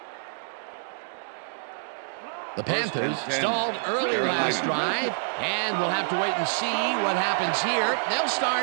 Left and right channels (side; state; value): left; silent; digital silence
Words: The Panthers stalled early last drive, and we'll have to wait and see what happens here. They'll